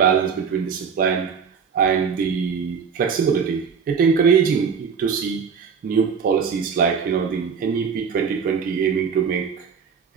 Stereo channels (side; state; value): left; quieter; 6.3 dB